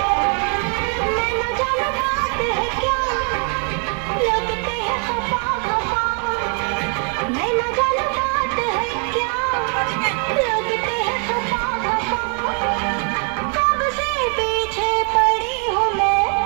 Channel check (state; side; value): quieter; left; 38.3 dB